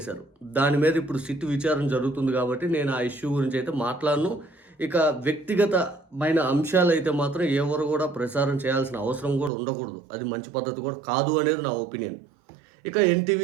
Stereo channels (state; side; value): drops out; left; at 9.5 s